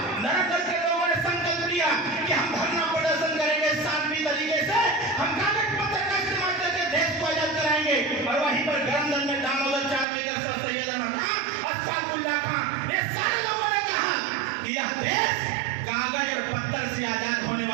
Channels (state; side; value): drops out; left; at 10.1 s